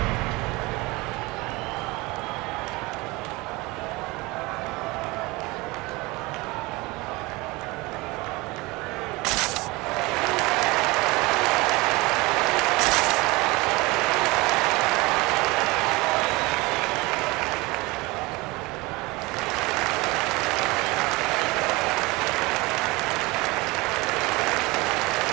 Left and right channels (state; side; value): quieter; left; 23.2 dB